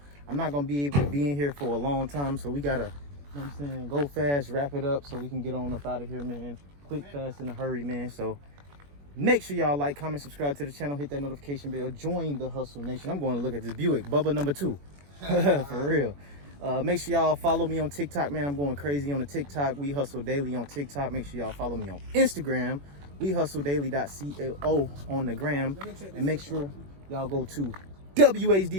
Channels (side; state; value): left; late; 21 ms